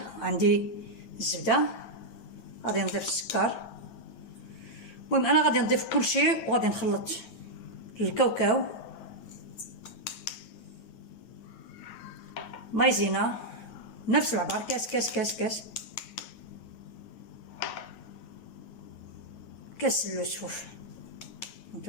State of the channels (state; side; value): late; right; 9.3 ms